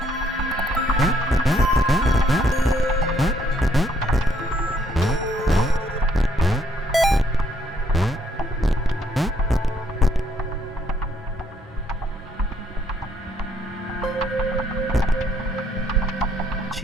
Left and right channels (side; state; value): both; normal; correlation 0.69